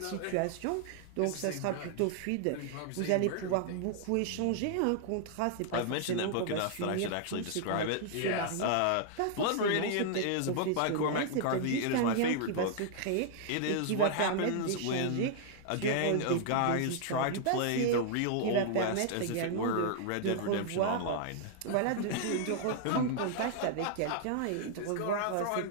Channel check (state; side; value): different; both; correlation 0.00